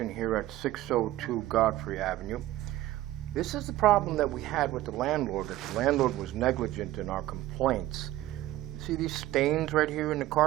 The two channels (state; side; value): quieter; left; 15.5 dB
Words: here at 602 Godfrey Avenue. This is the problem that we had with the landlord, that the landlord was negligent in our complaints. You see these stains right here in the